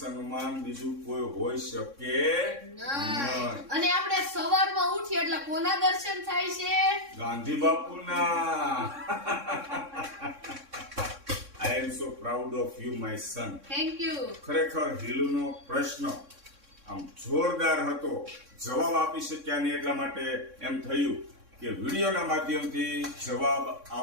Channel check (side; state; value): left; late; 3.6 ms